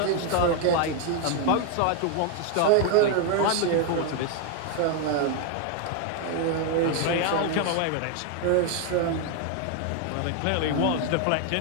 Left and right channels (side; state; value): both; different; correlation 0.01